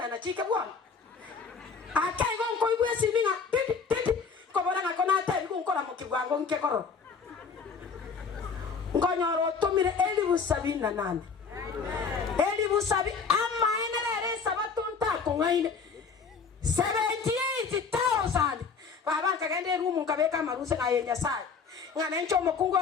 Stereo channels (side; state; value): right; quieter; 5.4 dB